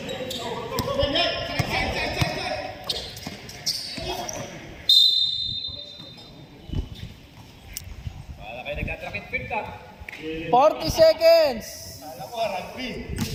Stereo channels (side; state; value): both; identical; correlation 1.00